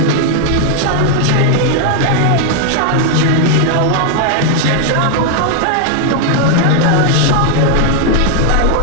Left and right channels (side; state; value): both; different; correlation 0.00